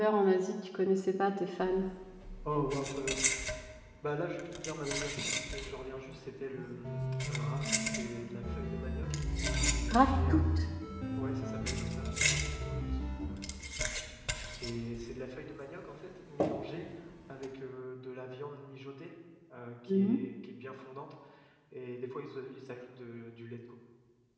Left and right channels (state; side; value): identical; both; correlation 1.00